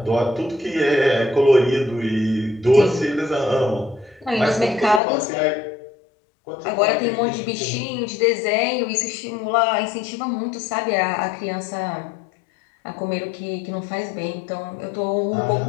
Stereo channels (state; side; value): drops out; right; at 5.0 s